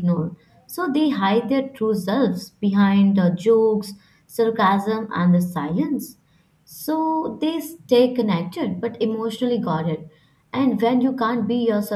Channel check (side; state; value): both; identical; correlation 1.00